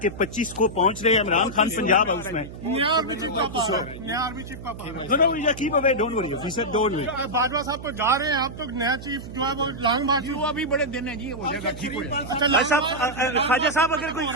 کہ 25 کو پہنچ رہے ہیں عمران خان پنجاب ہاؤس میں. نیا آرمی چیف کا نیا آرمی چیف کا keep away, don't worry, he sad don't worry. Bajwa صاحب تو جا رہے ہیں، آپ تو نیا چیف جو ہے وہ لانگ مارچ ہوا بھی بڑے دن ہے جی، ہو جائے گا ٹھیک ہو جائے گا. خواجہ صاحب اگر کوئی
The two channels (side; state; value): right; noise; hum, 12 dB below the sound